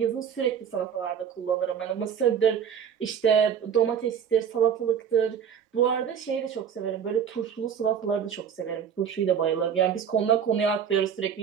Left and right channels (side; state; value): left; quieter; 7.9 dB